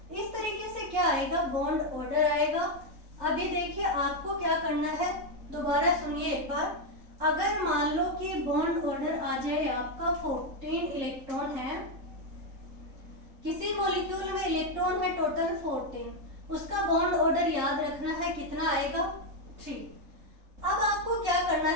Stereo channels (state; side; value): late; left; 3.7 ms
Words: इस तरीके से क्या आएगा, बॉन्ड ऑर्डर आएगा। अभी देखिए आपको क्या करना है, दोबारा सुनिए एक बार। अगर मान लो कि बॉन्ड ऑर्डर आ जाए आपका 14 इलेक्ट्रॉन है, किसी मॉलिक्यूल में इलेक्ट्रॉन है टोटल 14, उसका बॉन्ड ऑर्डर याद रखना है कितना आएगा 3। अब आपको क्या करना